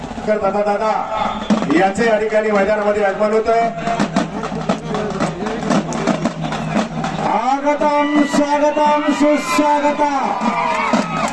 दादा याचे या ठिकाणी मैदानामध्ये आगमन होतं। स्वागतम स्वागतम सुस्वागतम।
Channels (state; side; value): identical; both; correlation 1.00